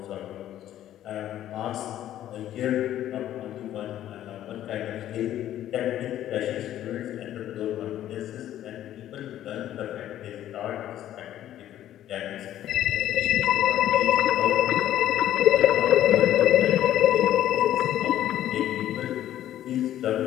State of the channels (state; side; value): quieter; right; 12.2 dB